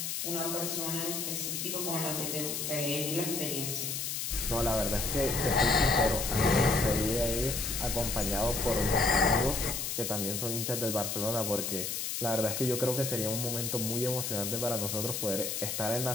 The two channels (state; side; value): noise; left; hiss, 2 dB below the sound